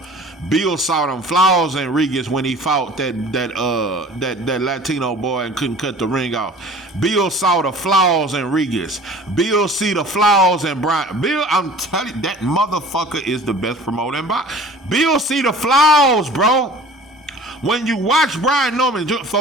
Bill saw them flaws in Rodriguez when he fought that Latino boy and couldn't cut the ring off. Bill saw the flaws in Rodriguez. Bill see the flaws in Brian. Bill, I'm telling you, that motherfucker is the best promoter in boxing. Bill see the flaws, bro. When you watch Brian Norman,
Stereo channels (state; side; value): normal; both; correlation 0.45